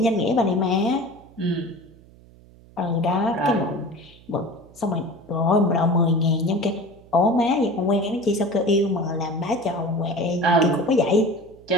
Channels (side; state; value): right; noise; hum, 24 dB below the sound